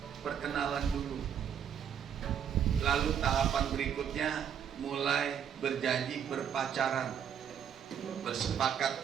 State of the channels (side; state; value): left; quieter; 8.5 dB